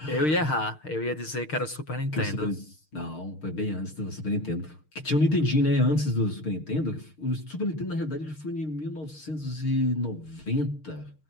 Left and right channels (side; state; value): right; late; 6.5 ms